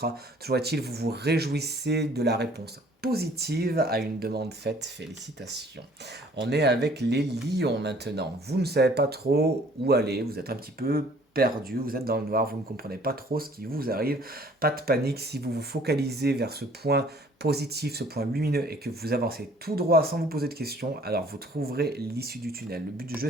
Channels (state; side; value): normal; both; correlation 0.56